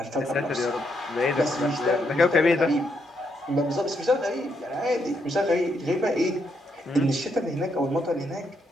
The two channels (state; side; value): normal; both; correlation 0.78